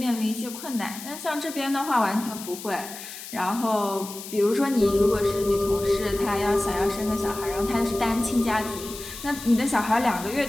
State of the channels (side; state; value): left; noise; hiss, 12 dB below the sound